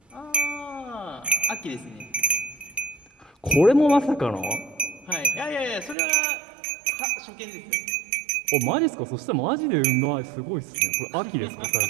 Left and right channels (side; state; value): left; drops out; at 6.0 s